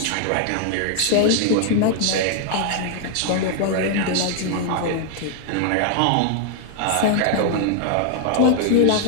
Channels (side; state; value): both; different; correlation 0.00